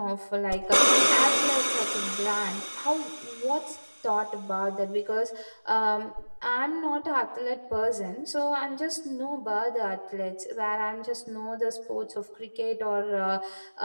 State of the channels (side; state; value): both; inverted; correlation -1.00